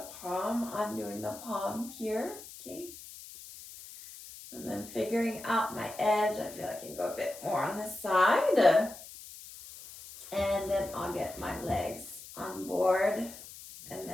palm, undoing the palm here, okay? And then figuring out my edge, I feel I can go a bit more on this side. And then I'll get my legs on board. And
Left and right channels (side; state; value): left; noise; hiss, 15 dB below the sound